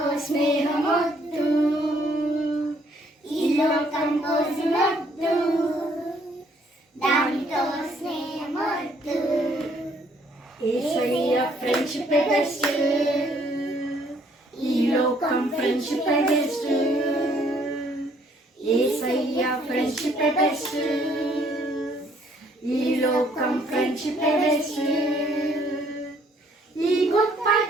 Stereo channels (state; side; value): normal; both; correlation 0.64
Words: స్నేహమొద్దు. ఈ లోకం పోజులొద్దు, దానితో స్నేహమొద్దు. యేసయ్య ఫ్రెండ్షిప్ బెస్ట్, ఈ లోకం ఫ్రెండ్షిప్ బెస్ట్. యేసయ్య ఫ్రెండ్షిప్ బెస్ట్, ఈ లోకం ఫ్రెండ్షిప్ బెస్ట్. ఈ గొప్ప